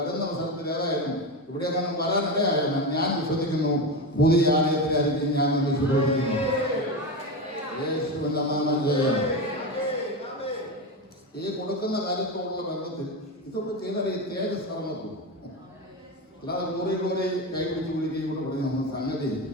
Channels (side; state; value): both; normal; correlation 0.18